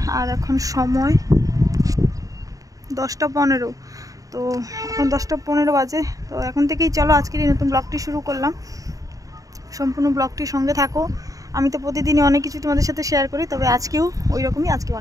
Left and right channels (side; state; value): left; late; 0.17 ms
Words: আর এখন সময় 10টা 15। তো এখন 10টা 15 বাজে। তো এখন থেকেই চলো আজকের এই নতুন ব্লগটি শুরু করলাম। সম্পূর্ণ ব্লগটির সঙ্গে থাকো। আমি তো প্রতিদিনই অনেক কিছু তোমাদের সাথে শেয়ার করি, তবে আজকেও ওই রকমই, আজকে